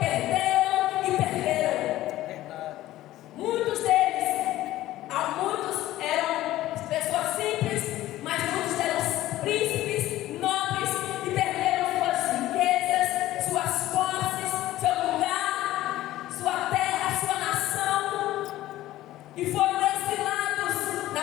Muitos eram pessoas simples, mas muitos eram príncipes, nobres e perderam suas riquezas, suas posses, seu lugar, sua terra, sua nação, e foram exilados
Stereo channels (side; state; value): right; quieter; 15.2 dB